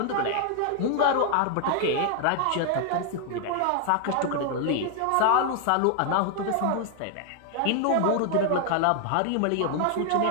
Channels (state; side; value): different; both; correlation 0.00